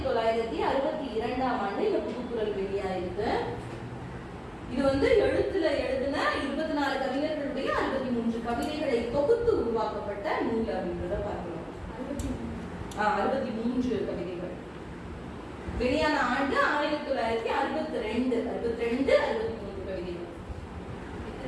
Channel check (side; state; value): both; identical; correlation 1.00